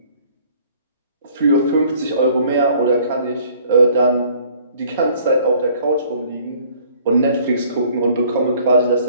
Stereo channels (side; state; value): both; inverted; correlation -0.57